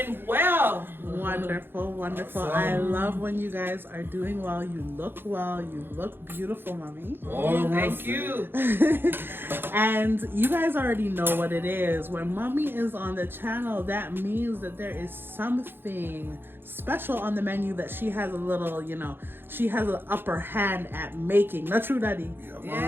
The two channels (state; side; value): late; left; 0.10 ms